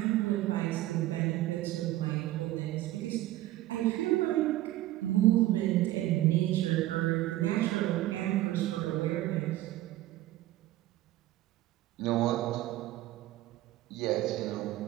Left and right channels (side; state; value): left; quieter; 15.6 dB